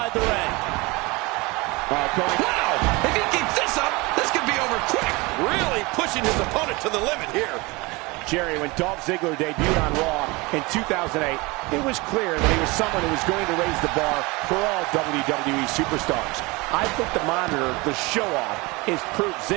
the ring. Wow, if he keeps this up, this could be over quick. Really pushing his opponent to the limit here. Jerry, when Dolph Ziggler debuted on Raw in 2008, it was clear that he was someone who was going to raise the bar for all WWE superstars. I think the monitor, the show-off, is proof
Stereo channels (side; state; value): left; quieter; 24.6 dB